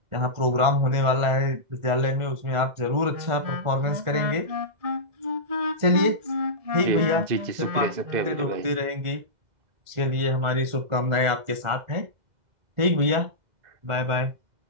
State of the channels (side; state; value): left; late; 1.4 ms